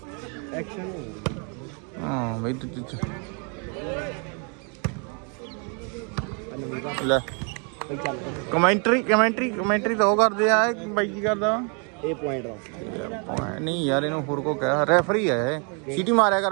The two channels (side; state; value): left; quieter; 37.6 dB